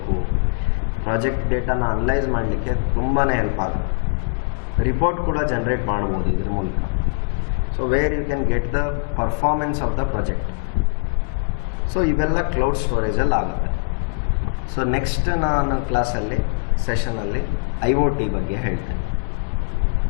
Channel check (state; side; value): silent; right; 65 dB below the other